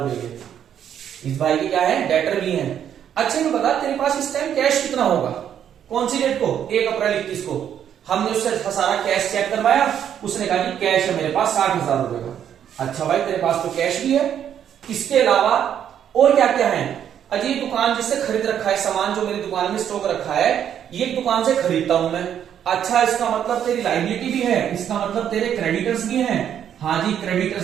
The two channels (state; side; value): quieter; left; 9.4 dB